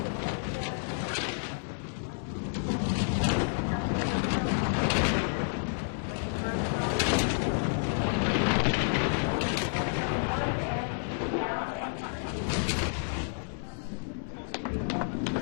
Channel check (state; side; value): silent; right; 58 dB below the other